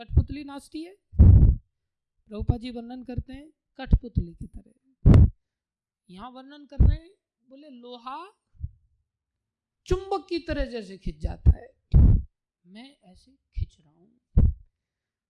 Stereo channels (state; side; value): identical; both; correlation 1.00